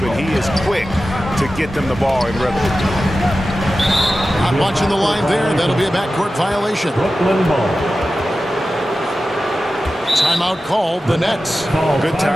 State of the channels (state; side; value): normal; both; correlation 0.94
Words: he is quick to get them the ball in rhythm. Not watching the line there. That'll be a backcourt violation. Brooklyn ball. Timeout called the Nets. Good